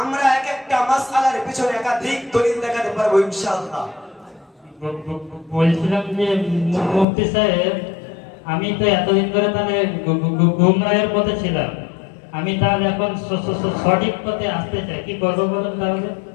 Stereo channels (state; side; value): drops out; right; at 7.1 s